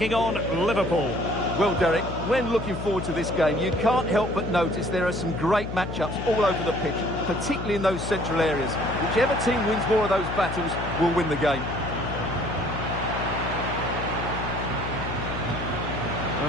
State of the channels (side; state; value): left; noise; hum, 6 dB below the sound